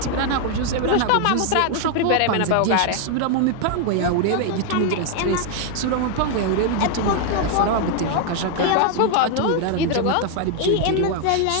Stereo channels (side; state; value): both; different; correlation 0.00